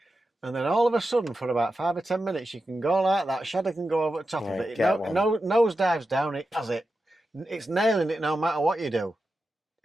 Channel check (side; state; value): both; normal; correlation 0.90